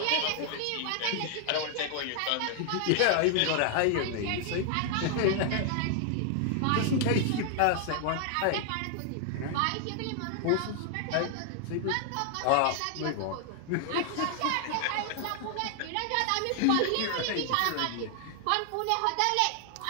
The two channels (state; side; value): different; both; correlation 0.00